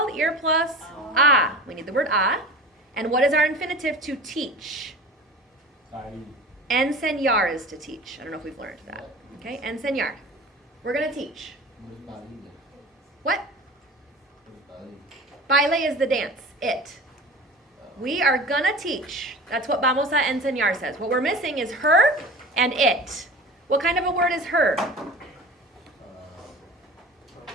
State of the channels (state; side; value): normal; both; correlation 0.37